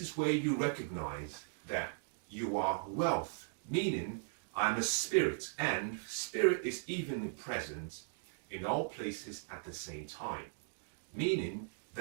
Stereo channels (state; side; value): silent; left; digital silence